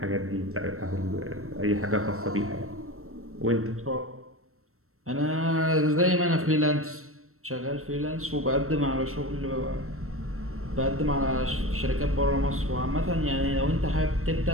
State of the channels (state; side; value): late; left; 0.63 ms